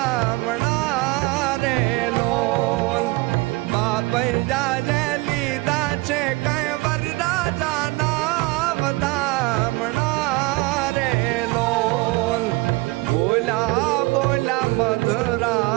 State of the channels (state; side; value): quieter; left; 23.2 dB